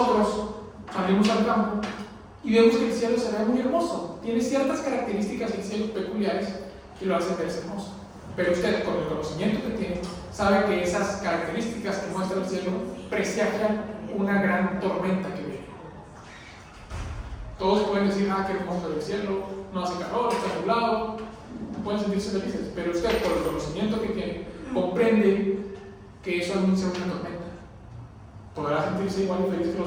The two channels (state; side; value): identical; both; correlation 1.00